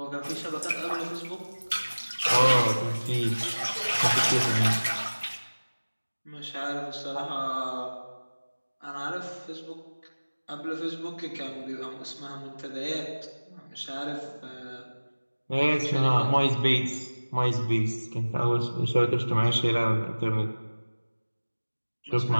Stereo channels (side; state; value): both; inverted; correlation -1.00